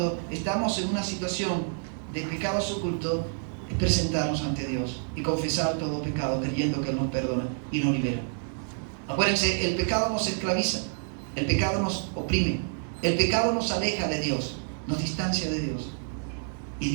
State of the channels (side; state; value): left; silent; 59 dB below the other